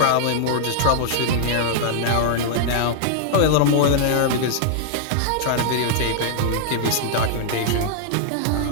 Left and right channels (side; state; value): both; different; correlation -0.01